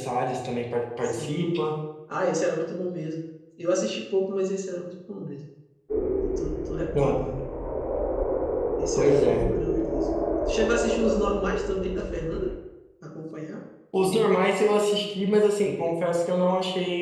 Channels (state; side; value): identical; both; correlation 1.00